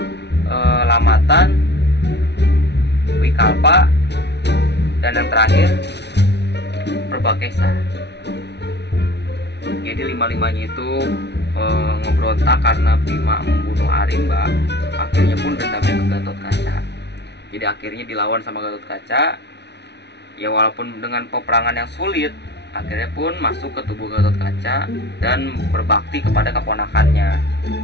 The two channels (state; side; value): late; right; 0.50 ms